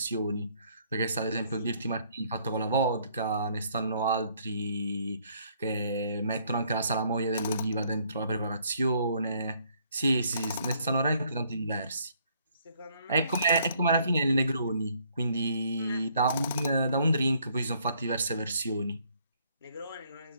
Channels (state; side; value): inverted; both; correlation -0.66